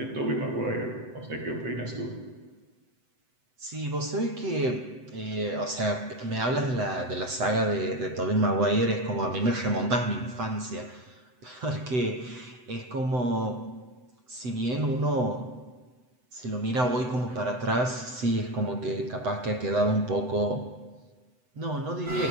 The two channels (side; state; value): left; late; 7.9 ms